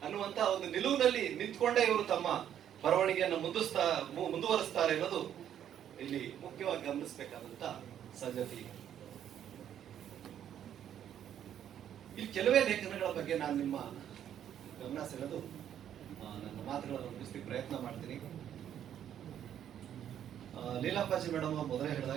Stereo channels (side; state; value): left; quieter; 10.0 dB